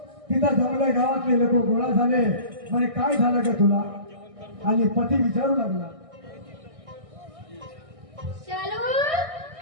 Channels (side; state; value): left; late; 1.6 ms